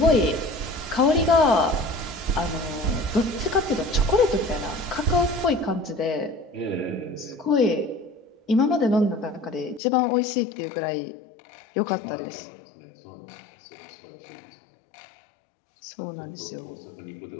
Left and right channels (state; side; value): drops out; right; at 9.8 s